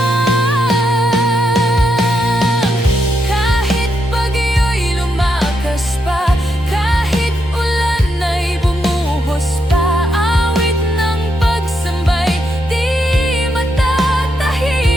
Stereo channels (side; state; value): both; normal; correlation 0.81